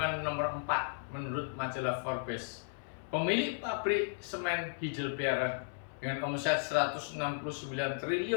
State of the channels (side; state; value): right; silent; 54 dB below the other